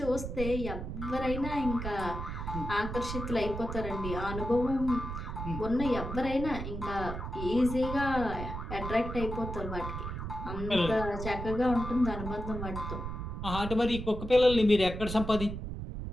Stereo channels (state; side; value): noise; right; rumble, 6 dB below the sound